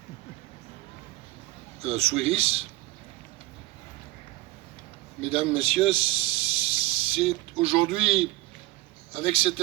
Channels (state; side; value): quieter; left; 18.8 dB